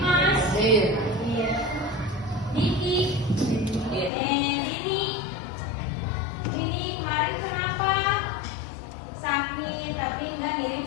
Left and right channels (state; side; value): drops out; right; at 4.1 s